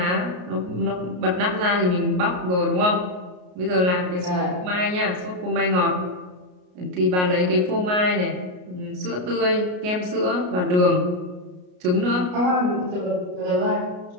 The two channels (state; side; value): late; left; 33 ms